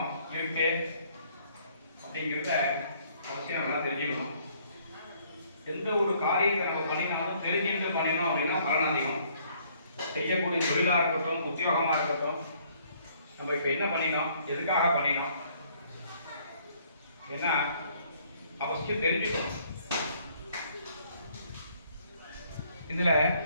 இருக்கு அப்படிங்கிறத அவசியம் எல்லாம் தெரிஞ்சுக்கணும். எந்த ஒரு காரியத்தை நம்ம பண்ணினாலும் தெரிஞ்சுட்டு பண்ணினோம் அப்படின்னா பலன் அதிகம். செய்யக்கூடிய தொழிலாக இருக்கட்டும், உத்தியோகமாக இருக்கட்டும், நம்ம இப்போ என்ன பண்ணினோம், எதுக்காக பண்ணினோம், ஏன்னா அவசியம் தெரிஞ்சுக்கணும். இதுல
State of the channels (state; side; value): inverted; both; correlation -0.63